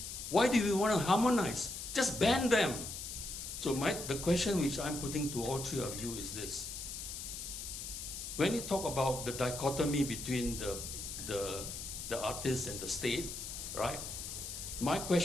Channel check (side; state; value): left; noise; hiss, 7 dB below the sound